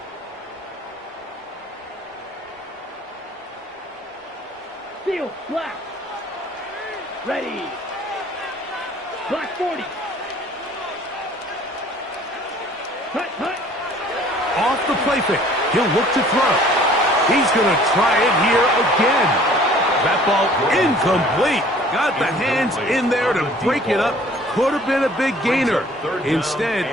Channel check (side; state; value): both; normal; correlation 0.53